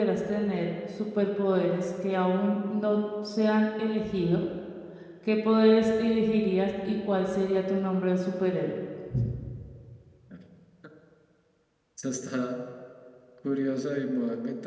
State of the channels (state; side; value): identical; both; correlation 1.00